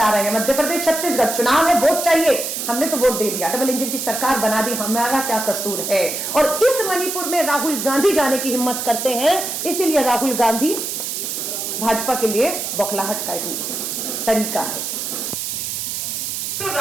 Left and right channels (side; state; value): right; noise; hiss, 4 dB below the sound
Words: रहे हैं, मध्य प्रदेश, छत्तीसगढ़, चुनाव है, वोट चाहिए, हमने तो वोट दे दिया, डबल इंजन की सरकार बना दी, हमारा क्या कसूर है? और इस मणिपुर में राहुल गांधी जाने की हिम्मत करते हैं, इसीलिए राहुल गांधी भाजपा के लिए बौखलाहट का एक तरीका है।